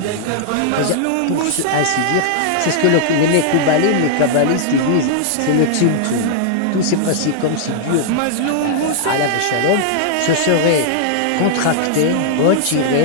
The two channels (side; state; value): both; different; correlation -0.01